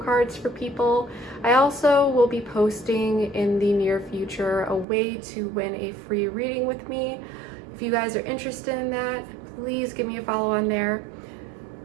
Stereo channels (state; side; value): drops out; left; at 4.9 s